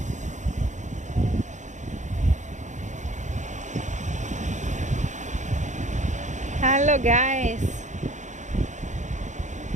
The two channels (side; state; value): left; late; 0.35 ms